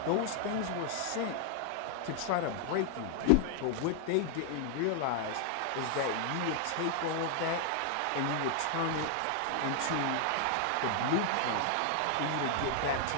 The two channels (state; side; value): different; both; correlation 0.00